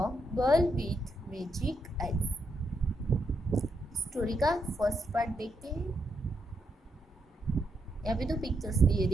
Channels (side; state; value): both; normal; correlation 0.80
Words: girl with magic I. Story का फर्स्ट पार्ट देखते हैं। यहाँ पे दो पिक्चर्स दिए,